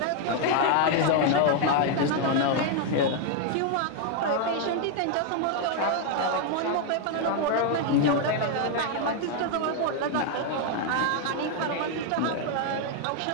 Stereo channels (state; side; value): different; both; correlation 0.00